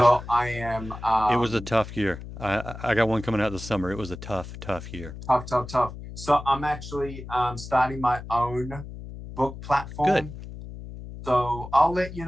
I am. It was a tough year. I got one coming out this summer. It was a tough year. Tough. So I'm actually starting my own book platform. Good. So I'll let you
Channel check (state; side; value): noise; left; hum, 12 dB below the sound